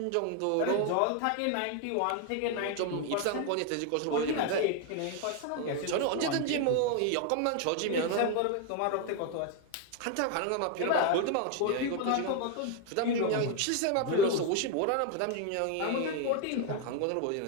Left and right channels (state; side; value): different; both; correlation 0.01